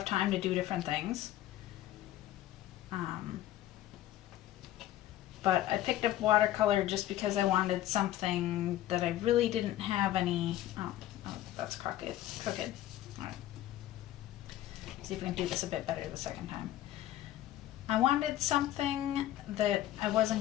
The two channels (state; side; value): quieter; right; 13.7 dB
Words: time to do different things. But I picked up watercolor just because I wanted something that I really didn't have any, oh that's crooked. Alright. See if we can do this a bit better the second time. I wanted something that I